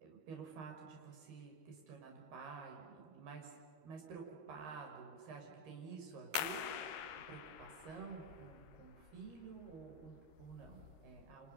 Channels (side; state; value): left; late; 13 ms